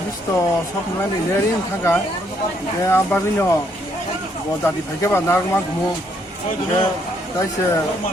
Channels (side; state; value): both; normal; correlation 0.71